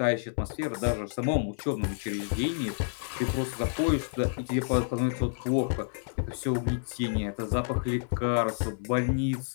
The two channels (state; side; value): silent; right; 58 dB below the other